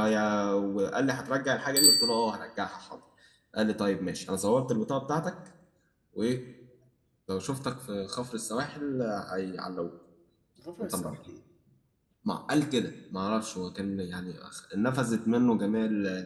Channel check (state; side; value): identical; both; correlation 1.00